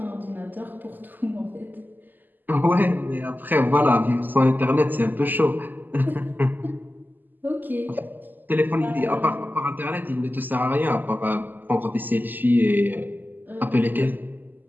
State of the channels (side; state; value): left; late; 0.088 ms